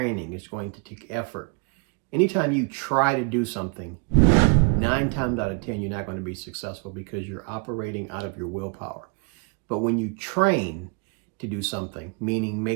It's going to take effort. Anytime you try to do something, 9 times out of 10, you're not going to be successful because you're operating out of your willpower. But when you train to do something, meaning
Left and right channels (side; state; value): left; quieter; 33.9 dB